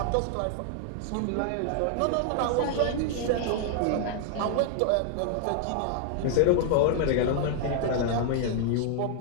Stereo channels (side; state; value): both; different; correlation 0.00